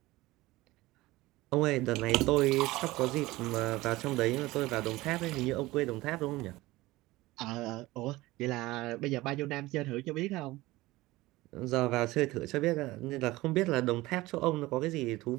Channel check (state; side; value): quieter; left; 19.1 dB